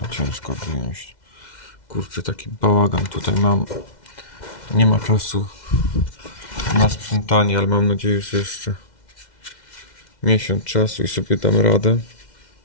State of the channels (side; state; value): right; late; 2.1 ms